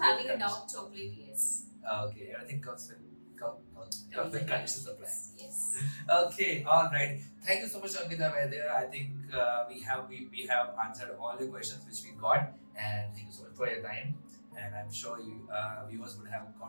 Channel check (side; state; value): both; inverted; correlation -1.00